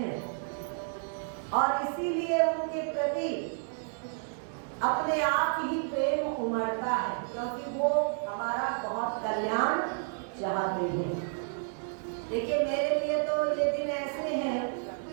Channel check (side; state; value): left; silent; digital silence